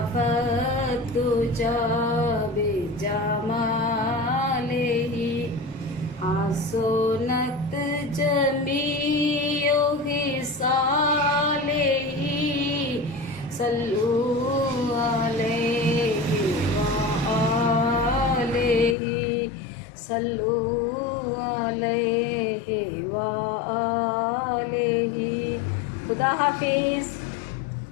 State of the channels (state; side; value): drops out; right; at 18.9 s